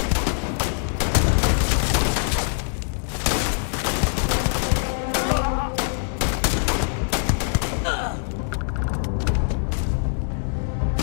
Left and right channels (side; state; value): right; silent; digital silence